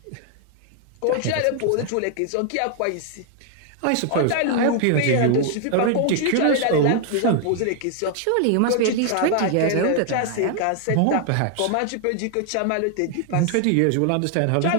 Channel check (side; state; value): both; different; correlation 0.00